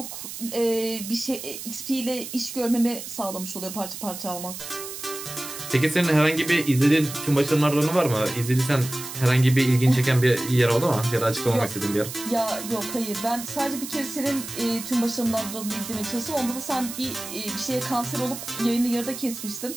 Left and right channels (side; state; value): right; noise; hiss, 10 dB below the sound